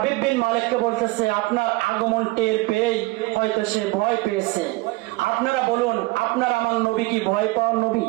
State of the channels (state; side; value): quieter; left; 22.1 dB